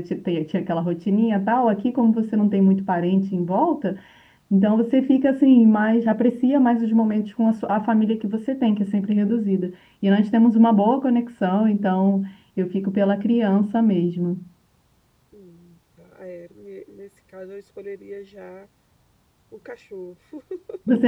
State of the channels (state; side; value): identical; both; correlation 1.00